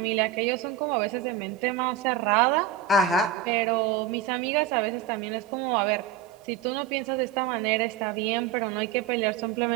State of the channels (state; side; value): quieter; left; 9.3 dB